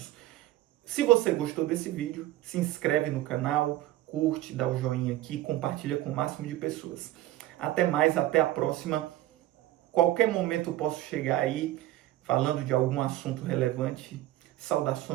Se você gostou desse vídeo, se inscreve no canal, curte, dá o joinha aqui, compartilha com o máximo de pessoas. Até mais, até a próxima. Qualquer momento eu posso chegar aí falando de algum assunto relevante.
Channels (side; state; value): left; quieter; 15.3 dB